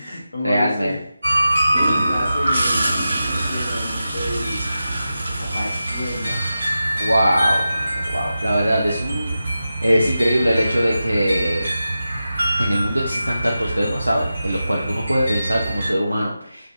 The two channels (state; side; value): inverted; both; correlation -0.92